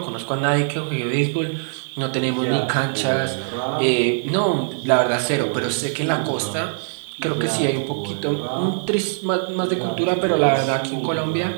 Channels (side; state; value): left; silent; digital silence